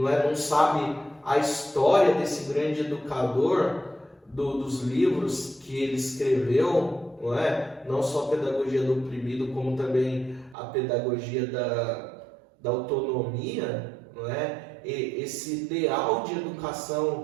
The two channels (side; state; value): left; drops out; at 10.6 s